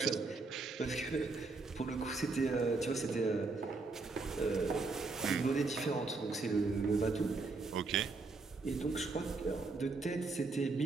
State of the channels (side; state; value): left; quieter; 3.8 dB